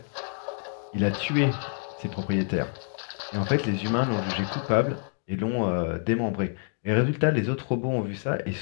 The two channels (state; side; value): silent; right; 57 dB below the other